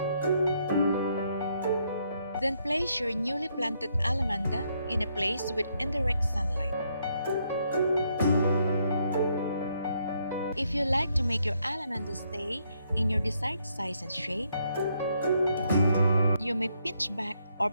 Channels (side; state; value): both; inverted; correlation -0.74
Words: Then place your newly planted Allamanda in a place with indirect sunlight. If you like to make your Allamanda stay in your desired size and shape, you may pinch back or